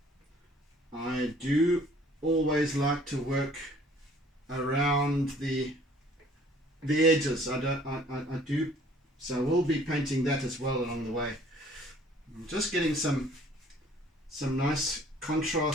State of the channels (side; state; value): both; normal; correlation 0.56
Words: I do always like to work around the edges. I do, so we'll be painting that as well along the way. I'm just getting some nice